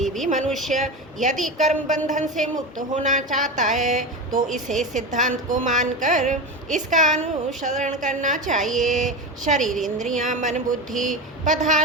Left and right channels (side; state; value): both; normal; correlation 0.22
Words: भी मनुष्य यदि कर्म बंधन से मुक्त होना चाहता है तो इसे सिद्धांत को मानकर इसका अनुसरण करना चाहिए। शरीर इंद्रियां मन बुद्धि